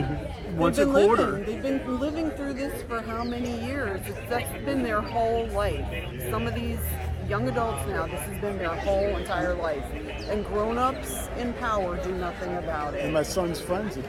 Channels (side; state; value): both; identical; correlation 1.00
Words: once a quarter. They've been living through this for how many years? That's been their whole life. Some of these young adults now, this has been their whole entire life. And grown-ups in power do nothing about it. And my son's friend's a